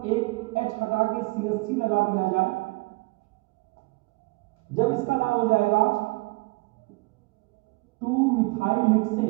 एक H हटा के CH3 लगा दिया जाए, जब इसका नाम हो जाएगा 2-मिथाइल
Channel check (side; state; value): left; quieter; 25.2 dB